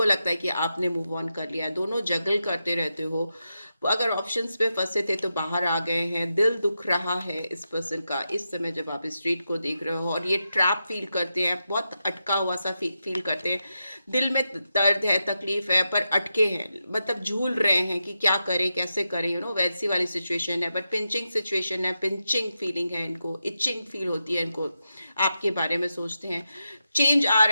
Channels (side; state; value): both; inverted; correlation -0.88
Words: लगता है कि आपने मूव ऑन कर लिया है। दोनों जगल करते रहते हो। अगर ऑप्शंस पे फंसे थे तो बाहर आ गए हैं। दिल दुख रहा है इस पर्सन का इस समय जब आप स्ट्रीट को देख रहे हो, और ये ट्रैप फील करते हैं, बहुत अटका हुआ सा फील करते हैं। दिल में दर्द है, तकलीफ है, पर अटके हैं, मतलब झूल रहे हैं कि क्या करें, कैसे करें, वैसी वाली सिचुएशन है। बट पिंचिंग सिचुएशन है, पिंचिंग फीलिंग है इनको, इचिंग फील होती है इनको, आपके बारे में सोचते हैं। चेंज आ